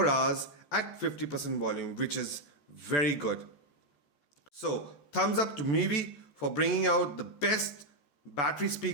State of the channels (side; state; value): right; late; 14 ms